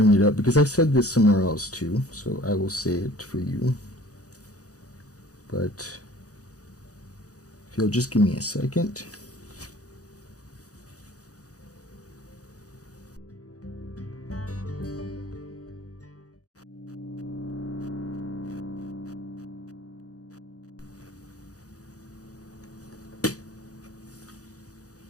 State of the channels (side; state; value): right; late; 0.67 ms